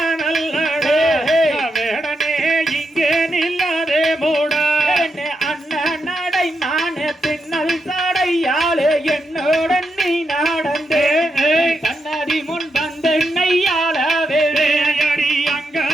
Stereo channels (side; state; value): both; normal; correlation 0.84